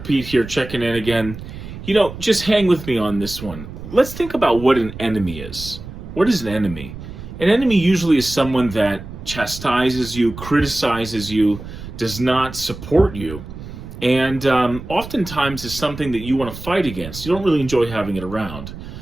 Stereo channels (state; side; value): noise; right; rumble, 12 dB below the sound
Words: here checking in again. Just hang with me on this one. Let's think about what an enemy is. What is an enemy? An enemy usually is someone that chastises you, criticizes you, does not support you, and oftentimes is something that you want to fight against. You don't really enjoy having it around.